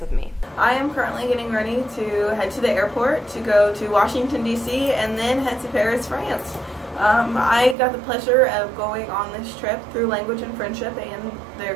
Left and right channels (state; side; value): drops out; left; at 7.8 s